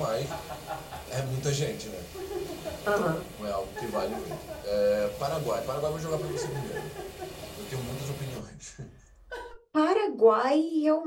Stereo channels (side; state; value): both; identical; correlation 1.00